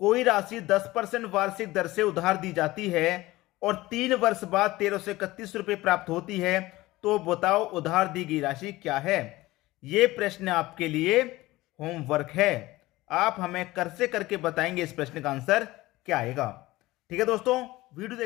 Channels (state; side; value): quieter; right; 18.6 dB